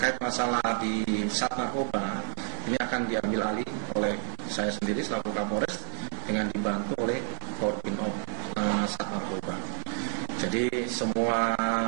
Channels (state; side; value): silent; left; 58 dB below the other